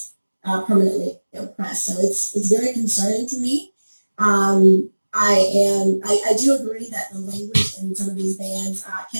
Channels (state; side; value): inverted; both; correlation -1.00